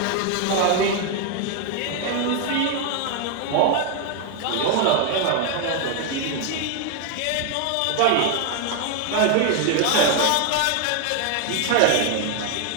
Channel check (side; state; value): both; different; correlation 0.01